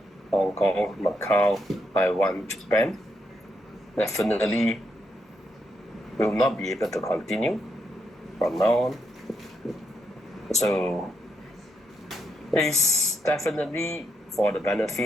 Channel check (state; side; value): normal; both; correlation 0.80